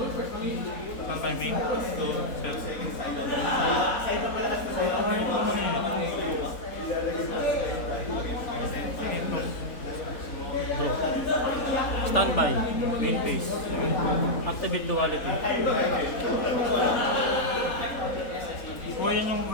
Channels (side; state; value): right; late; 3.8 ms